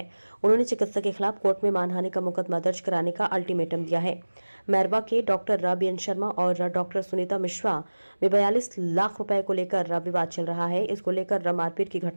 उन्होंने चिकित्सक के खिलाफ कोर्ट में मानहानि का मुकदमा दर्ज कराने का अल्टीमेटम दिया है। मैरवा के डॉक्टर बीएन शर्मा और डॉक्टर सुनीता मिश्रा में 42 लाख रुपए को लेकर विवाद चल रहा है। इसको लेकर मारपीट की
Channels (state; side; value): inverted; both; correlation -1.00